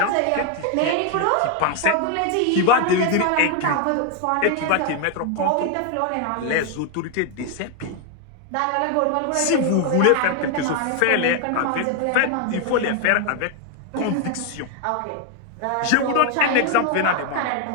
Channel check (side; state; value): both; different; correlation 0.01